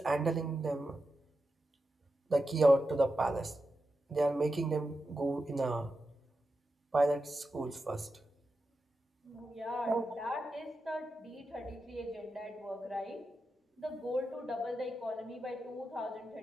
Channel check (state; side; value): normal; both; correlation 0.89